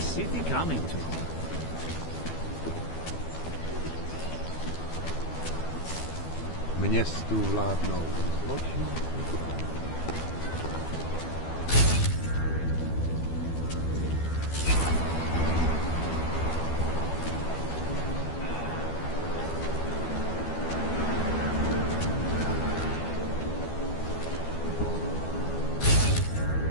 city coming to? Městu vládnou zločin.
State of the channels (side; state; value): right; late; 12 ms